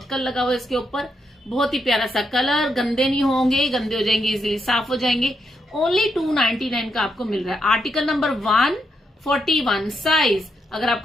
लगा हुआ है इसके ऊपर, बहुत ही प्यारा सा कलर, गंदे नहीं होंगे, गंदे हो जाएंगे इजीली साफ हो जाएंगे। ओनली 299 का आपको मिल रहा है। आर्टिकल नंबर 141 साइज, अगर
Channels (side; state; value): both; normal; correlation 0.80